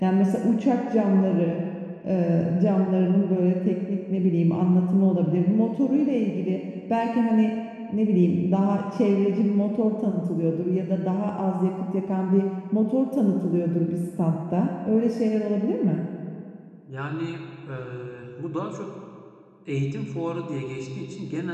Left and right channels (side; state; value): both; identical; correlation 1.00